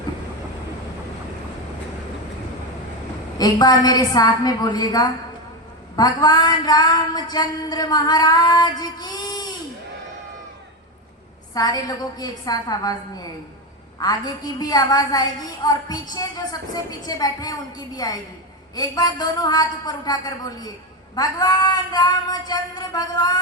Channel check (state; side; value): normal; both; correlation 0.14